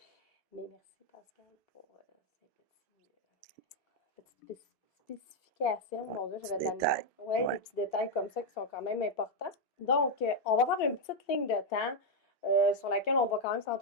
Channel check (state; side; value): normal; both; correlation 0.01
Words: mais merci Pascal pour ces petites spécifications. Ouais, Mon Dieu, petit j'avais de la détail. misère. Oui, des Ouais. petits détails comme ça qui sont quand même importants. Donc, on va faire une petite ligne de temps sur laquelle on va quand même